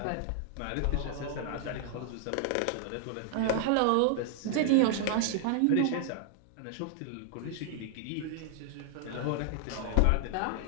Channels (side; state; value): both; different; correlation -0.01